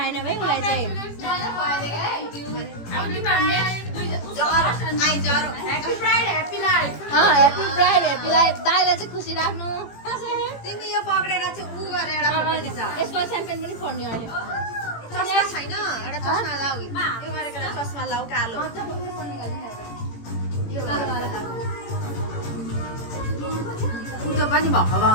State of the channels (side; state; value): right; late; 18 ms